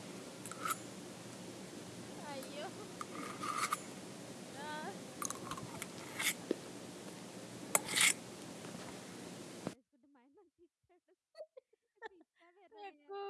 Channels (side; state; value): both; identical; correlation 1.00